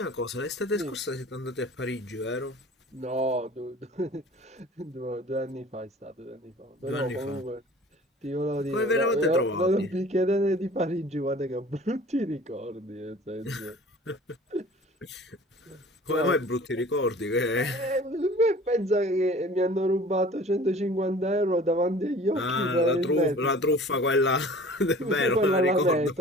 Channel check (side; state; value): both; normal; correlation 0.46